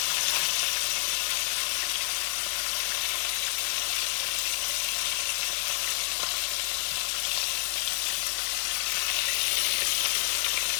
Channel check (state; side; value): silent; right; 59 dB below the other